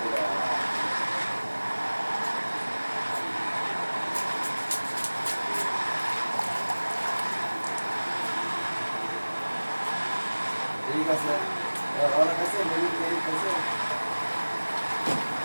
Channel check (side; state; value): both; inverted; correlation -1.00